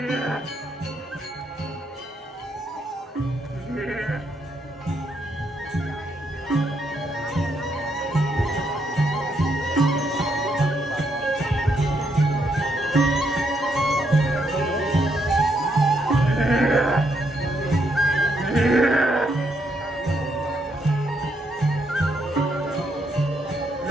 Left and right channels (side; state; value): both; normal; correlation 0.76